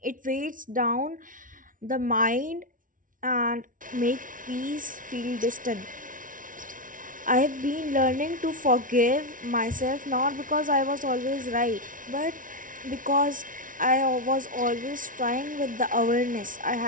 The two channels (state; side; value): late; left; 0.38 ms